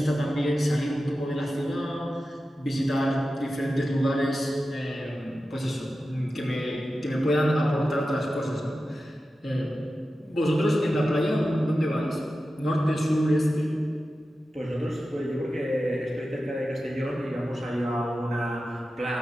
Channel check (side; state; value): both; normal; correlation 0.93